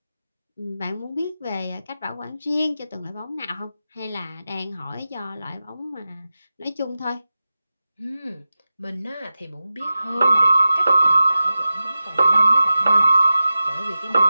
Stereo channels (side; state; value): both; inverted; correlation -0.94